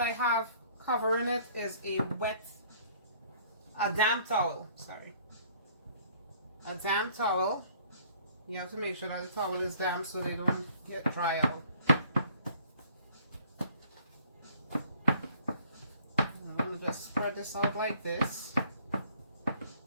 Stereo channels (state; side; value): inverted; both; correlation -0.56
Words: have covering it is a damp towel, a damp towel. You have to make sure that the towel is damp so they don't get dry out. I'm going to just spread this out like this.